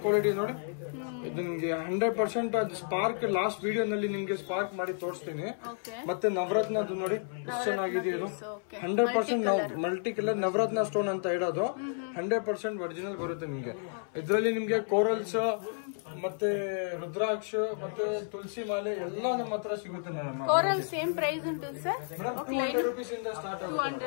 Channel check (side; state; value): right; silent; 57 dB below the other